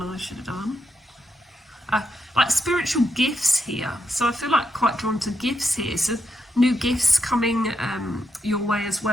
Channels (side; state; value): both; normal; correlation 0.82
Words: I should have done. Like spiritual gifts here, so I feel like quite drawn to gifts here. So new gifts coming your way as